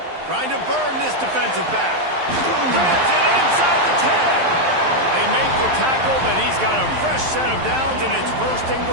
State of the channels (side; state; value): left; late; 11 ms